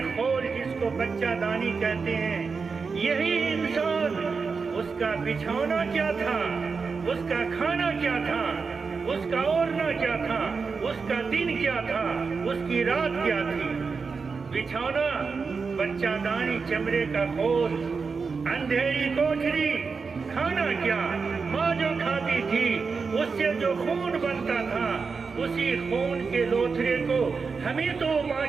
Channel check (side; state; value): left; quieter; 5.0 dB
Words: خول جس کو بچہ دانی کہتے ہیں، یہی انسان، اس کا بچھونا کیا تھا، اس کا کھانا کیا تھا، اس کا اوڑھنا کیا تھا، اس کا دن کیا تھا، اس کی رات کیا تھی۔ بچھونا بچہ دانی چمڑے کا خول، اندھیری کوٹھری، کھانا کیا، ماں جو کھاتی تھی اس سے جو خون بنتا تھا، اسی خون کے لوتھڑے کو ہمیں تو ماں